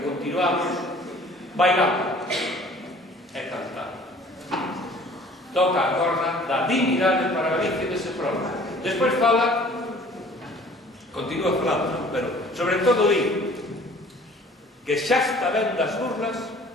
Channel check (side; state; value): both; normal; correlation 0.51